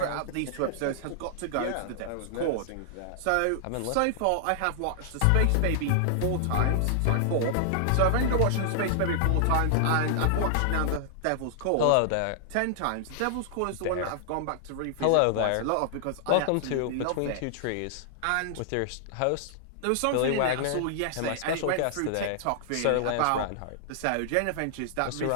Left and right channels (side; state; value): both; different; correlation -0.01